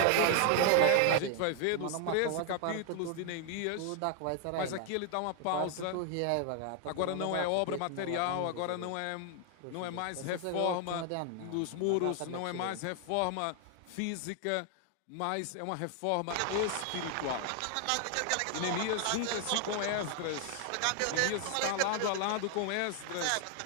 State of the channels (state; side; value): different; both; correlation 0.00